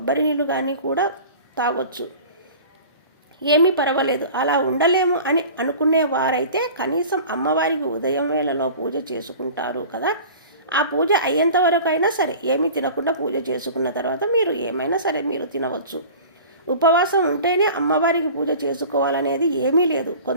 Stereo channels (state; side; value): inverted; both; correlation -0.40